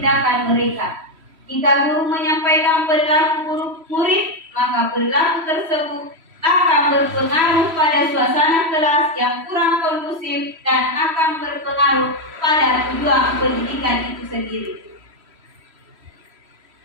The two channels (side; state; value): left; late; 3.1 ms